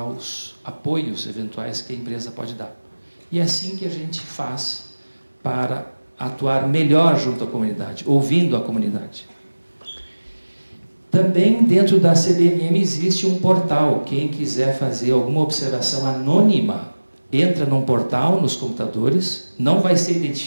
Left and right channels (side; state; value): both; inverted; correlation -1.00